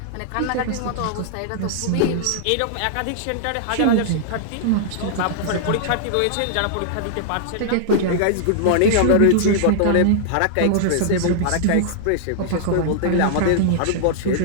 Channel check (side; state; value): both; different; correlation -0.01